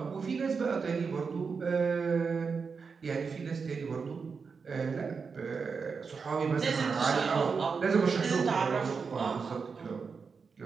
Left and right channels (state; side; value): quieter; left; 5.3 dB